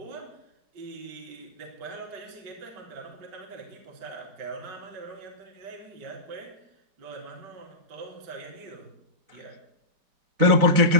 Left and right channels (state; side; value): late; left; 4.1 ms